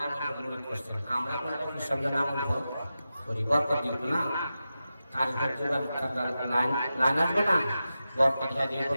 মনে করছেন আমরা কোনো পিসার নাম করি বরকত দিব না কাজ লাইন আসবে না বরকত দিয়ে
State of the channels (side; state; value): both; inverted; correlation -0.92